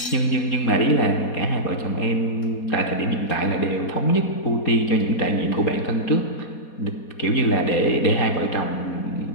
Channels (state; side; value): late; right; 4.2 ms